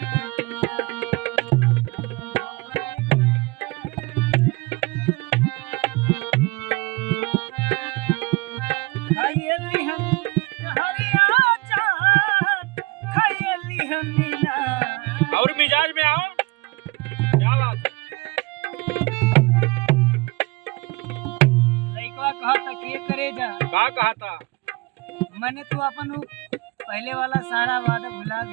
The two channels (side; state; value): left; quieter; 24.3 dB